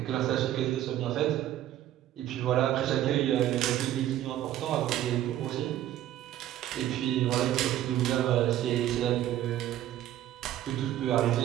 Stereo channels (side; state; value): left; quieter; 12.7 dB